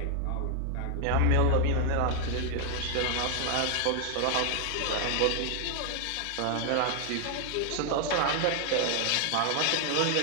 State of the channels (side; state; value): both; different; correlation 0.00